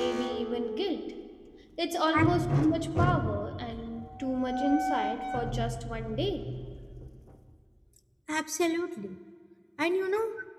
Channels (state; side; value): identical; both; correlation 1.00